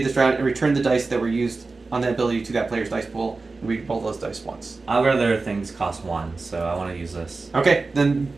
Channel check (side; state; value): left; quieter; 3.8 dB